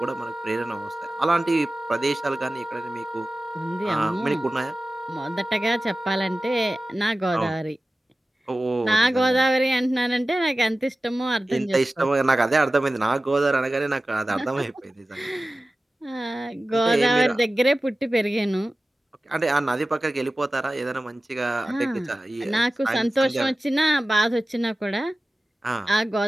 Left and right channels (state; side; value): normal; both; correlation 0.96